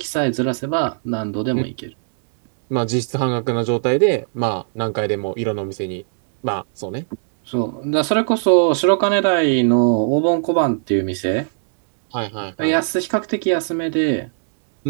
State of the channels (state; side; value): silent; left; digital silence